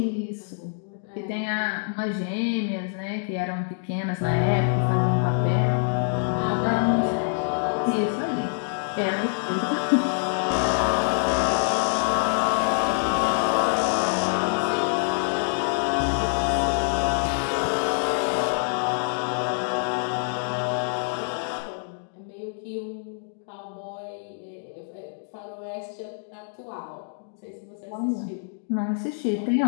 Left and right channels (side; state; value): right; silent; digital silence